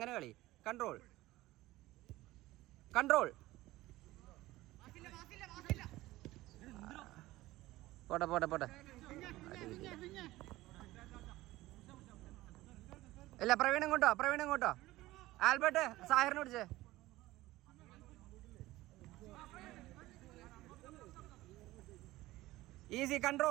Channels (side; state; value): left; quieter; 17.6 dB